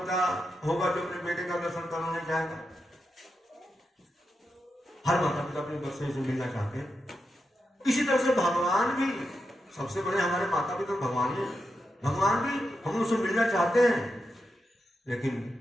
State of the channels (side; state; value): both; normal; correlation 0.87